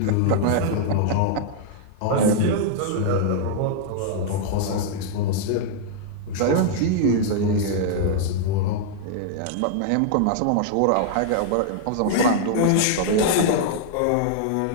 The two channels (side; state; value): both; different; correlation -0.01